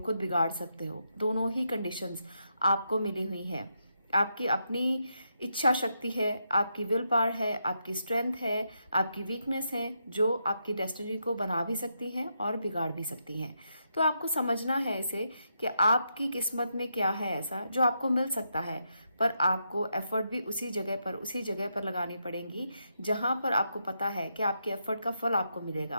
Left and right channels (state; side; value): inverted; both; correlation -0.82